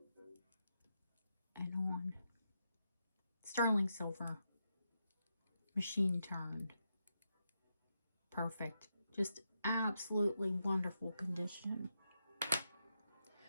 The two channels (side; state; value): both; inverted; correlation -0.84